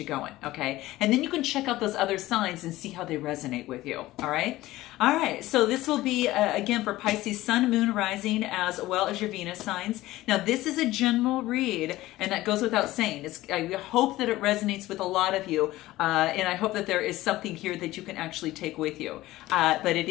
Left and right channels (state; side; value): quieter; right; 17.0 dB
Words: going, okay? And then you can check out those other signs and see how they resonate with you, all right? All right, so this will be, again, for Pisces Sun, Moon, Rising, as well as your Venus signs. Now, this is a general read, and that goes without saying. I hope that it resonates with a lot of you, and I hope that there is something here that you can actually take with you. But it